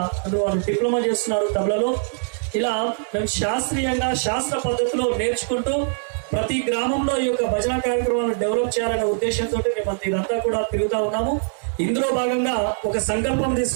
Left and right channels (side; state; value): left; silent; digital silence